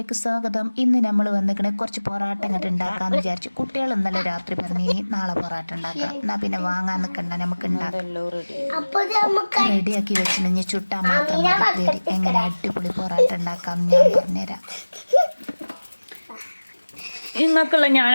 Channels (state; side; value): inverted; both; correlation -1.00